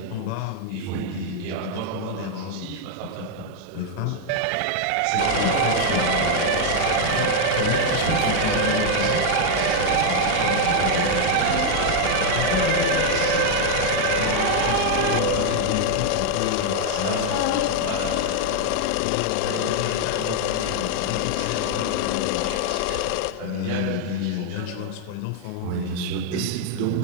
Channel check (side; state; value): both; different; correlation 0.00